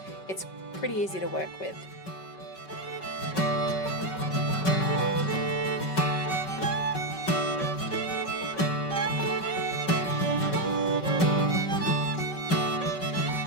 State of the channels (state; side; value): late; right; 5.3 ms